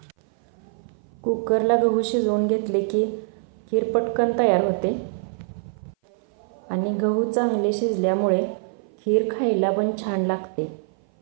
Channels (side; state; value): left; silent; 57 dB below the other